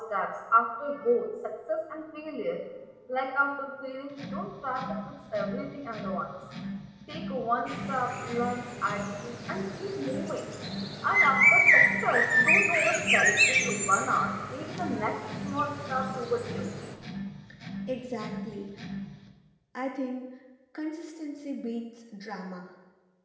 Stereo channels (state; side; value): identical; both; correlation 1.00